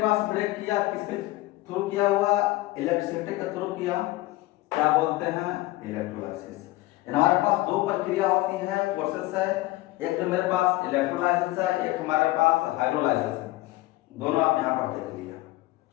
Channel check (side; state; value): right; quieter; 18.6 dB